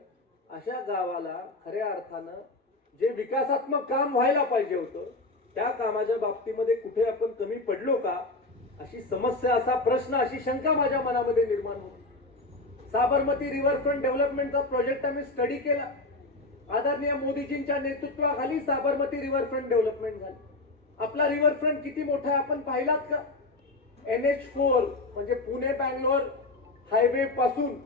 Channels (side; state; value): right; quieter; 3.0 dB